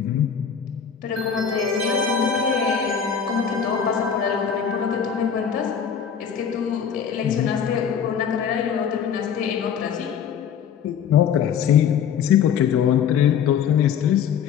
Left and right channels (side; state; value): right; quieter; 7.7 dB